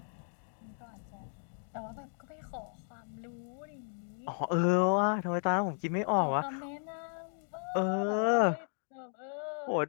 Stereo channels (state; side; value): silent; right; 55 dB below the other